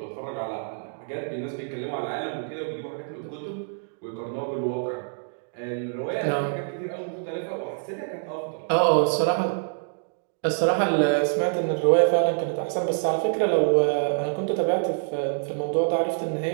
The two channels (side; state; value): left; silent; digital silence